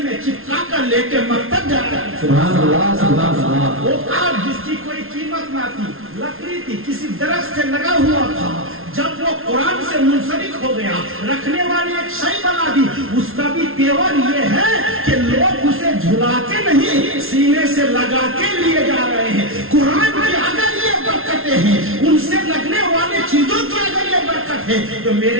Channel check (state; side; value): late; left; 0.61 ms